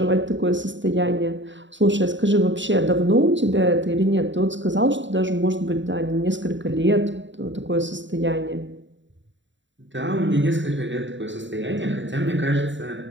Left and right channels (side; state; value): left; late; 0.54 ms